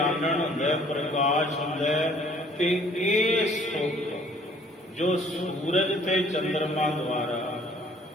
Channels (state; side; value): normal; both; correlation 0.58